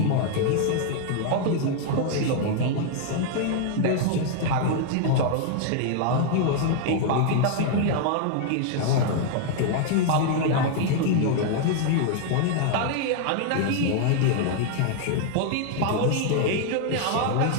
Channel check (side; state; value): both; different; correlation 0.00